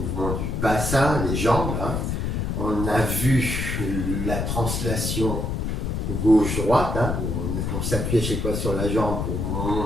du bassin, les jambes. On a vu la translation gauche-droite, où on s'appuie à chaque fois sur la jambe pour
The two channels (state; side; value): noise; left; rumble, 1 dB below the sound